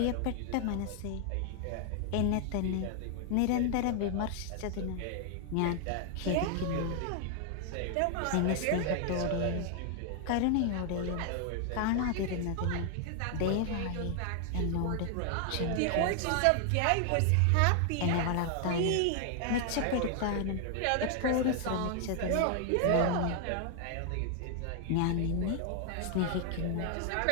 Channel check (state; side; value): different; both; correlation 0.00